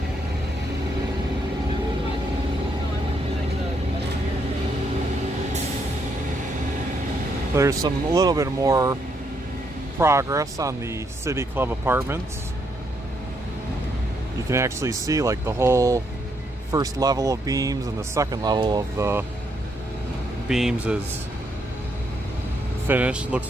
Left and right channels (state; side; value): normal; both; correlation 0.76